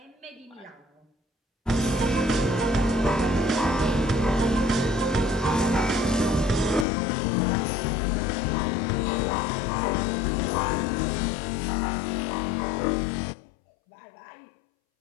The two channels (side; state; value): right; drops out; at 6.9 s